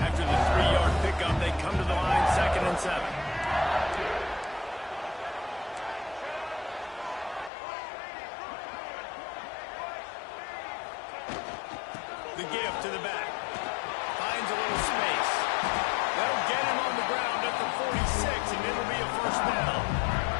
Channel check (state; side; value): drops out; right; at 7.5 s